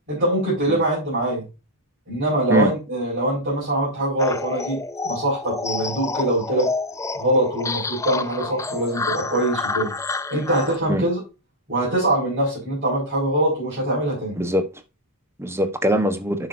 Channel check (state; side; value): normal; both; correlation -0.04